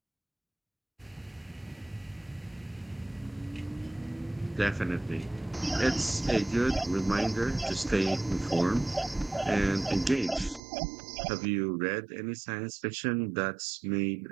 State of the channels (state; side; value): drops out; left; at 10.6 s